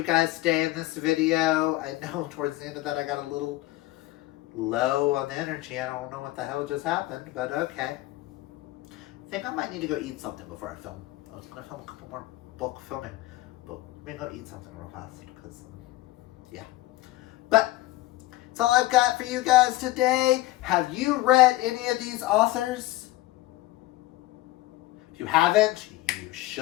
guys today in this video. I know towards the end of that I got a little low on the energy. I don't know what the hell just happened, but okay. I think I might need to go eat something before I film. I was going to film a couple more bulk filming, but I'm going to go eat something real fast because, yeah. But that's all I've got for you guys today. Have you read any of these authors? If you haven't, you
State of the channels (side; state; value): right; quieter; 17.5 dB